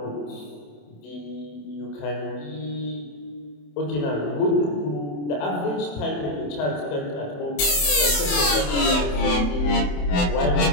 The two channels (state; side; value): late; right; 27 ms